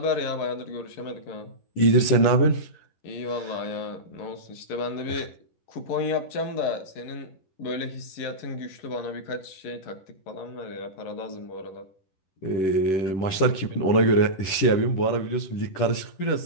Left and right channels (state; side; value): late; right; 11 ms